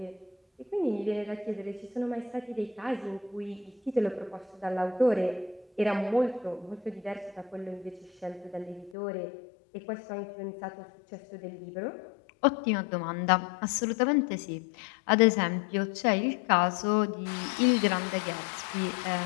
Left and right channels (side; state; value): right; drops out; at 8.9 s